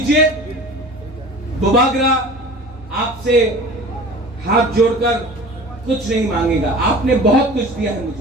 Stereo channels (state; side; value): normal; both; correlation 0.40